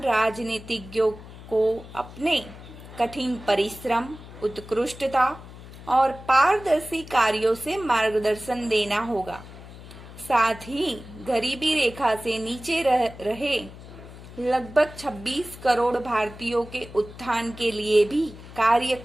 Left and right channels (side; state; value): left; noise; hum, 16 dB below the sound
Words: राजनीतिज्ञों को अपने कठिन परिश्रम, उत्कृष्टता और पारदर्शी कार्यों से मार्गदर्शन देना होगा। साथ ही गरीबी रेखा से नीचे रहे लगभग 26 करोड़ भारतीयों के उत्थान के लिए भी कार्य